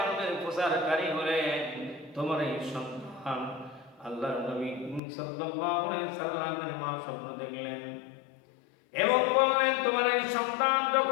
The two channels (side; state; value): right; drops out; at 5.0 s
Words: প্রচারকারী হলেন তোমার এই সন্তান আল্লাহর নবী সাল্লাল্লাহু আলাইহি সাল্লামের মা স্বপ্ন দেখলেন এবং বললেন তোমার এই সন্তান